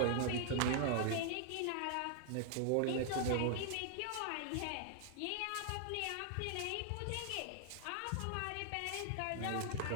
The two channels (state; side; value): different; both; correlation 0.00